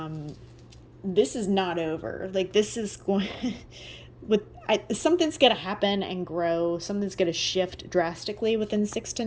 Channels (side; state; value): both; identical; correlation 1.00